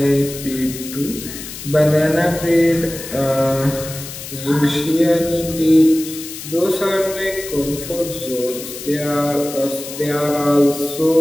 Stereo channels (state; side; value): noise; left; hiss, 11 dB below the sound